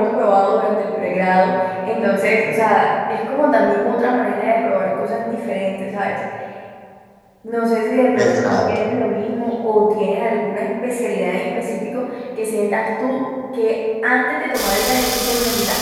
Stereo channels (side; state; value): both; identical; correlation 1.00